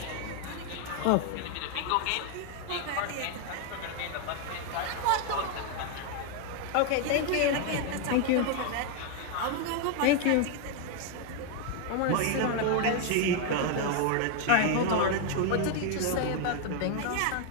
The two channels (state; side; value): different; both; correlation 0.00